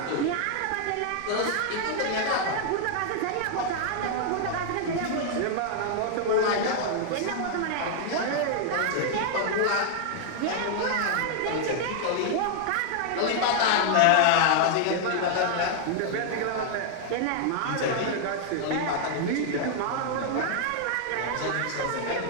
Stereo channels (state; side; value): different; both; correlation 0.00